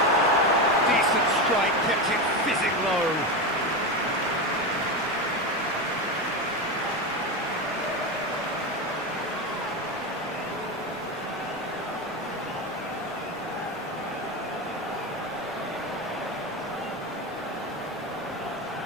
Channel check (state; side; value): normal; both; correlation 0.17